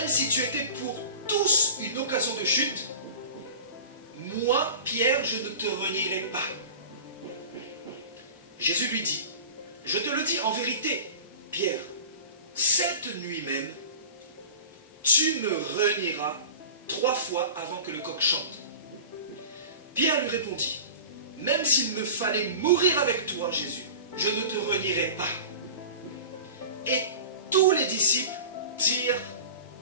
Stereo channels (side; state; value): both; inverted; correlation -0.36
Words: si tu étais pour tous une occasion de chute, moi, Pierre, je ne te renierai pas. Jésus lui dit: je te le dis en vérité, Pierre, cette nuit même, tu me renieras 3 fois avant que le coq chante. Pierre lui répondit: même s'il me fallait mourir avec toi, Jésus, je ne te renierai pas. Et tous les disciples dirent